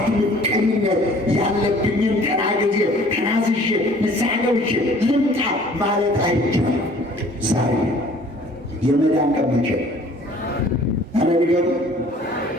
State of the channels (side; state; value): both; normal; correlation 0.53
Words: ምቀኝነት ያለብኝን ተናግጄ ተናዝዤ ንስሐ ገብቼ ልምጣ ማለት አይቻልም። ዛሬ የመዳን ቀን መቼ ነው? አረጋግጡ።